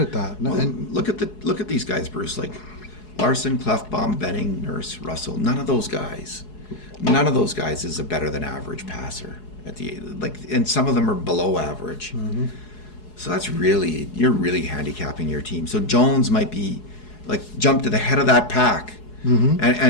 that. Well, and look at these guys, Bruce. Like Larson, Klefbom, Benning, Nurse, Russell. None of those guys is a better than average passer and some of them are below average. So you're really handicapping your team. So Jones might be jump to the head of that pack.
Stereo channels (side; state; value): right; late; 4.7 ms